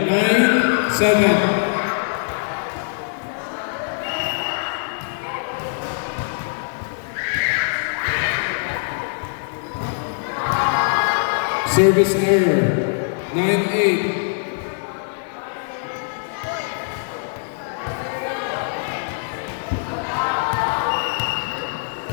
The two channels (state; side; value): silent; right; digital silence